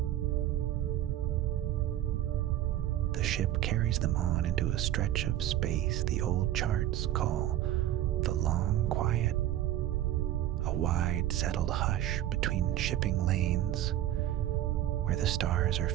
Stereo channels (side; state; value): left; quieter; 12.7 dB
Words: The ship carries them on into a stretch of space the old charts call the Long Quiet, a wide settled hush between shipping lanes where the stars are